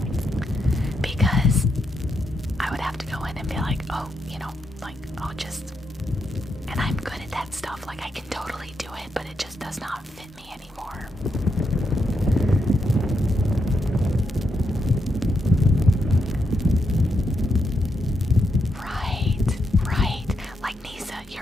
oh, you know, like, I'll just, and I'm good at that stuff, like I can totally do it, but it just does not fit me anymore. Right. Like Nisa,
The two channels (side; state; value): both; normal; correlation 0.81